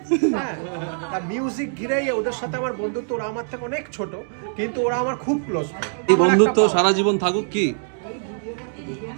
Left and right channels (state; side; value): silent; left; digital silence